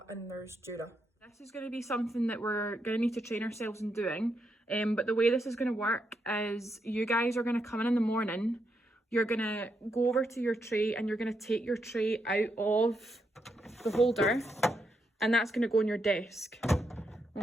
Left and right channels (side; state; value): both; normal; correlation 0.81